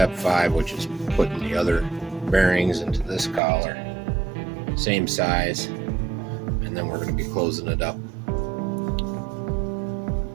5, which is putting the other bearings into this collar. Same size. And then we're going to be closing it up.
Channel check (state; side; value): drops out; left; at 3.4 s